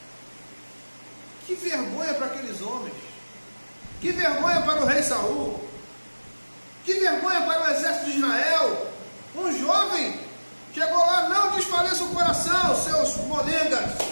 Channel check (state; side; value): inverted; both; correlation -1.00